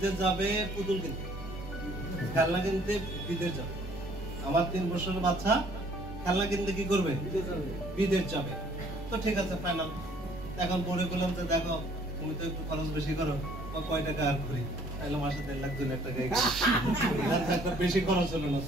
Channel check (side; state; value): right; noise; rumble, 18 dB below the sound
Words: যাবে পুতুল কিনতে, খেলনা কিনতে বিদেশ যাবে। আমার 3 বছরের বাচ্চা খেলনা কিনতে কি করবে? বিদেশ যাবে। তো ঠিক আছে ফাইনাল। এখন পরে বললাম যে দেখো তুমি তো একটু খরচ বেশি করো, কয় টাকা আর করি, তাহলে মাসে 1.5 লাখ 2 লাখ টাকা একটা বেশি খরচ হলো না।